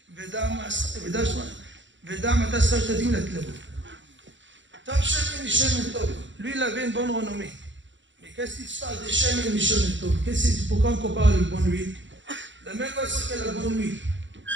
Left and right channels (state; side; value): late; left; 0.54 ms